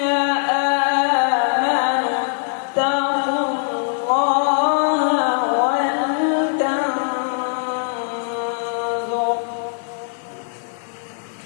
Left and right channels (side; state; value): right; silent; 56 dB below the other